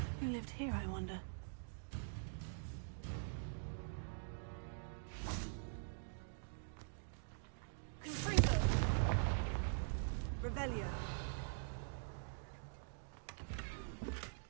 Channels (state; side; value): silent; left; digital silence